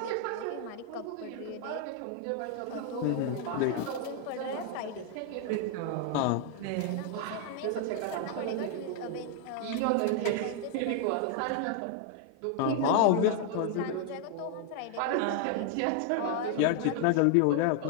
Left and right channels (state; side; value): different; both; correlation 0.00